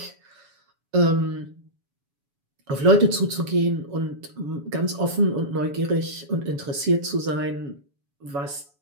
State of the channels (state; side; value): late; left; 7.1 ms